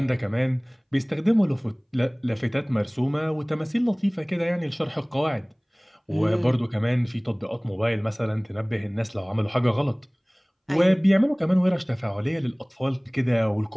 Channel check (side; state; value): both; identical; correlation 1.00